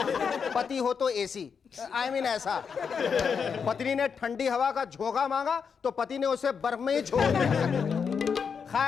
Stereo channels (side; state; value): right; quieter; 6.3 dB